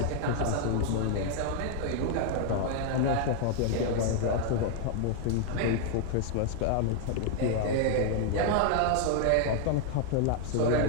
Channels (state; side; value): different; both; correlation 0.00